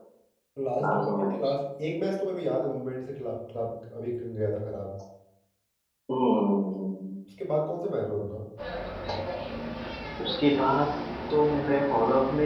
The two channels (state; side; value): identical; both; correlation 1.00